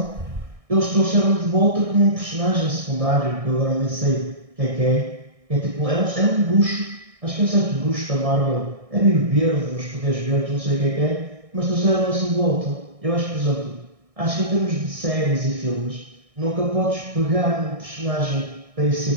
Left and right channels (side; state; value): left; late; 1.6 ms